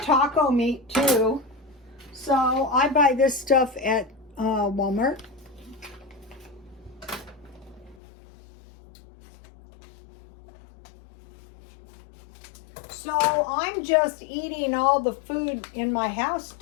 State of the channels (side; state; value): right; drops out; at 8.0 s